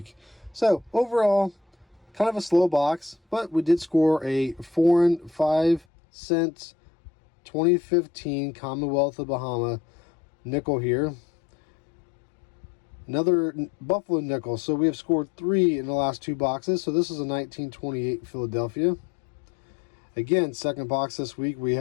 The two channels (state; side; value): drops out; right; at 5.9 s